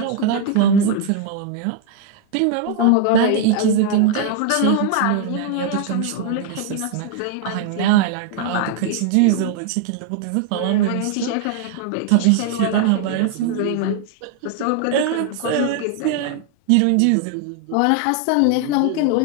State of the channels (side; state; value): both; different; correlation 0.00